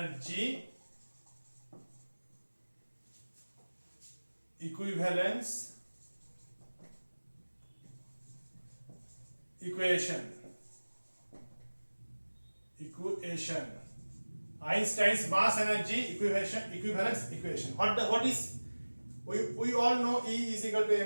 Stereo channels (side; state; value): both; inverted; correlation -1.00